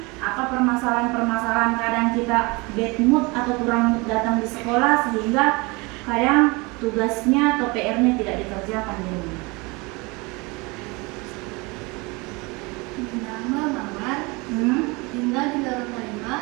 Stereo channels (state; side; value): quieter; left; 26.2 dB